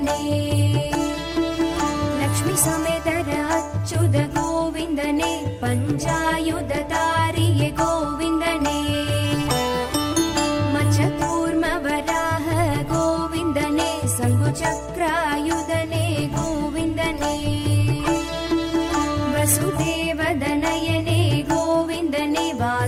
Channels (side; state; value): both; identical; correlation 1.00